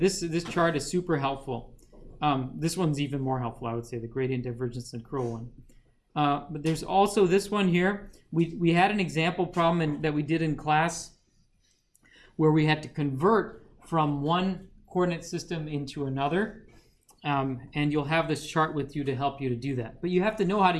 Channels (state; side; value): identical; both; correlation 1.00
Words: chart is super helpful. This one's even more helpful, I would say, the gradient, divergence, and curl one. But there's also this one here. We had an example problem that we did in class where we had to convert from one coordinate system into another. And you'll have this chart with you to help you to do that. But you have to know how to